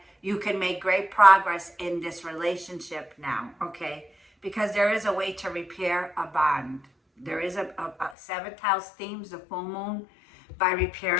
you can make great progress in this relationship now, okay? Because there is a way to repair a bond. There is a 7th house themes, the full moon, by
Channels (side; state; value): right; drops out; at 8.2 s